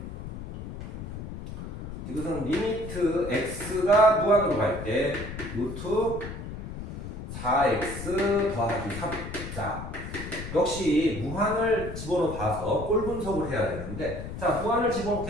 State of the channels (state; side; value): noise; left; rumble, 8 dB below the sound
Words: 디귿은 리미트 x가 무한으로 갈 때 루트 4x 더하기 3. 자, 역시 무한을 집어넣어 봐서 꼴 분석을 해야 되는데, 자, 무한을